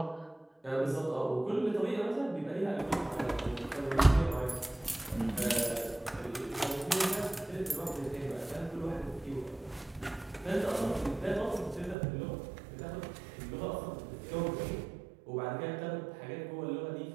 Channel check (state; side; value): drops out; left; at 12.0 s